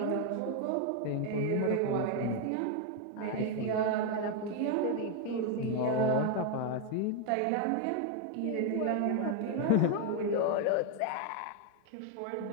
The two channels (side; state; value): both; different; correlation 0.01